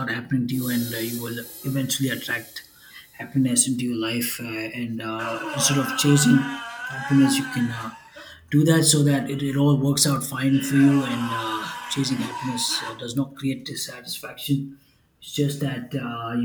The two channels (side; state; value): both; identical; correlation 1.00